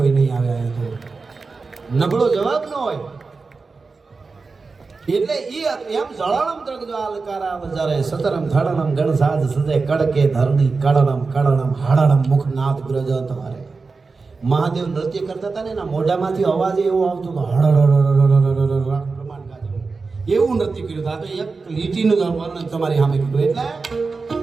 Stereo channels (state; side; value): quieter; left; 4.3 dB